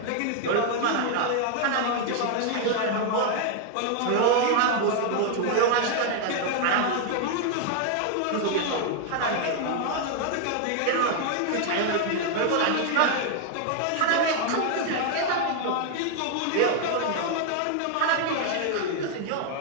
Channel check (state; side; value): different; both; correlation 0.00